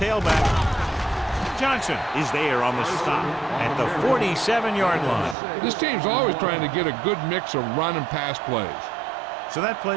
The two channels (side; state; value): left; drops out; at 5.4 s